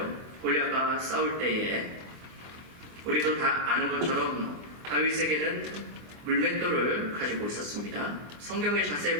골리앗과 싸울 때에 우리도 다 아는 것처럼 다윗에게는 물맷돌을 가지고 있었습니다. 성경에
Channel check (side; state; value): left; late; 24 ms